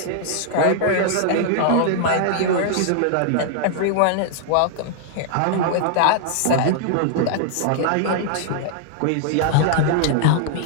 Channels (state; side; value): different; both; correlation -0.01